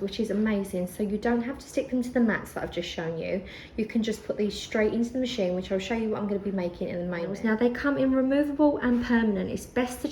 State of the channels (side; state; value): both; identical; correlation 1.00